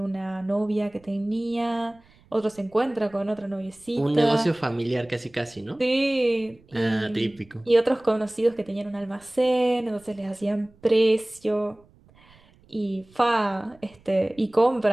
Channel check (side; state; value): right; noise; rumble, 29 dB below the sound